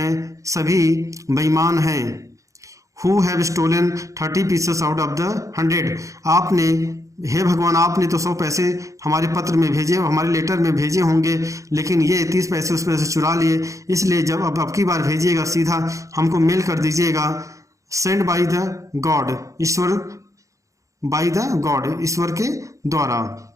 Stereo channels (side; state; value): left; late; 0.15 ms